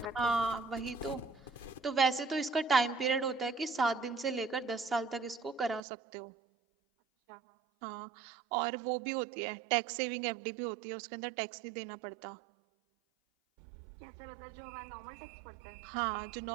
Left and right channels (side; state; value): left; drops out; at 5.8 s